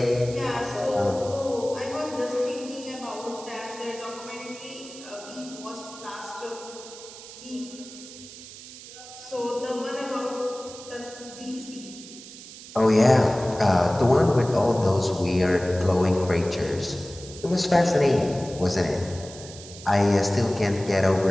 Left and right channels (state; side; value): noise; right; hiss, 16 dB below the sound